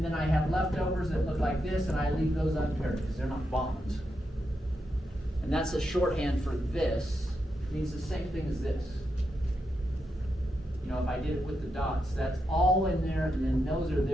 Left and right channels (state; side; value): normal; both; correlation 0.85